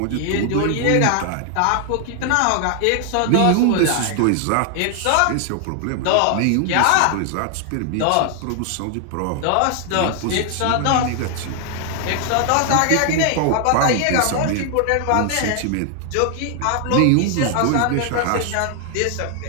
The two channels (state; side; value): different; both; correlation 0.00